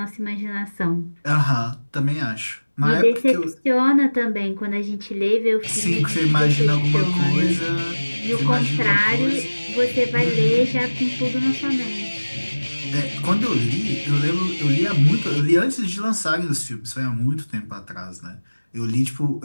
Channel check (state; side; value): inverted; both; correlation -1.00